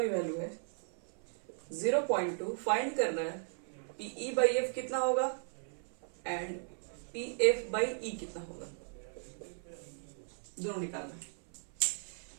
वैल्यू है 0.2। फाइंड करना है PE by F कितना होगा and P F by E कितना होगा, दोनों निकालना है।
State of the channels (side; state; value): left; silent; 53 dB below the other